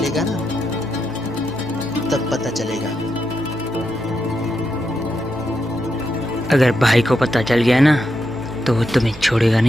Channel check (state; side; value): normal; both; correlation 0.84